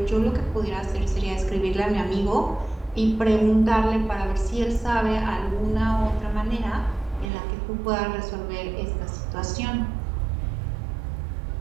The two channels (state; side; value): drops out; left; at 7.2 s